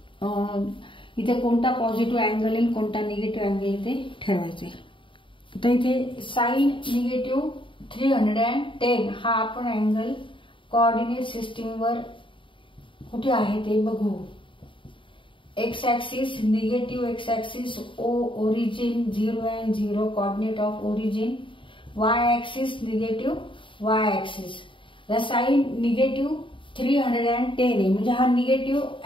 इथे कोणता पॉझिटिव्ह अँगल येईल कोणता निगेटिव्ह अँगल येईल ते ठरवायचे. तर इथे साइन निगेटिव्ह 310 हा आपण अँगल कोऑर्डिनेट सिस्टीम वर कुठे आहे ते बघू. X axis negative x axis origin 0 and 0 coordinate of origin. Y axis negative y axis. Sine negative 310 आहे म्हणजे हा निगेटिव्ह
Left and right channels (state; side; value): late; right; 0.25 ms